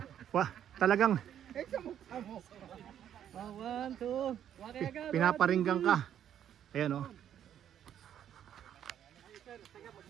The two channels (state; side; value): quieter; left; 10.0 dB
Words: wah, talagang Samok-samok! 1, 2. pinaparinggang ka. Ayan oh.